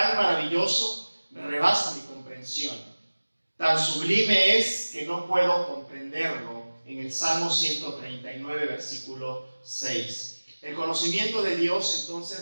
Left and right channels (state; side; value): inverted; both; correlation -1.00